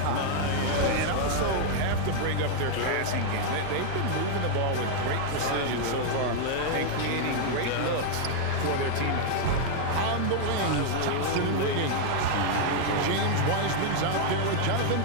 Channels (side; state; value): both; different; correlation 0.00